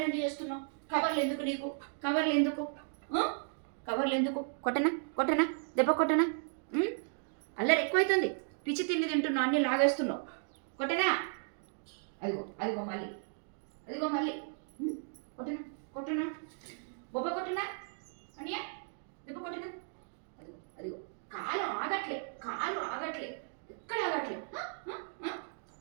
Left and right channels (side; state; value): left; silent; digital silence